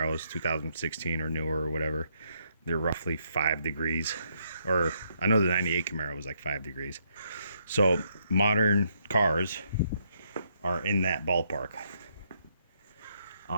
2016 or newer or whatever, they're roughly 5 degrees. Or I know the 98 Camaro was like 5 degrees. So modern cars are in that ballpark.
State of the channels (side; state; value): both; inverted; correlation -0.74